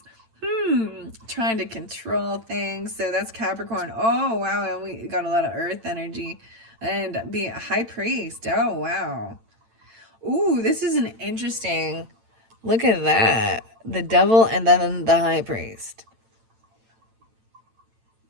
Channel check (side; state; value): left; late; 9.0 ms